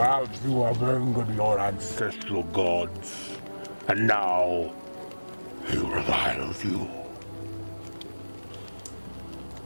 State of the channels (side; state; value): both; inverted; correlation -1.00